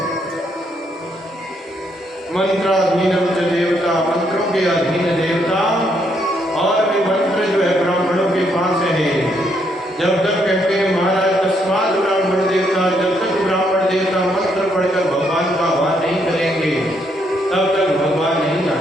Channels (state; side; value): normal; both; correlation 0.74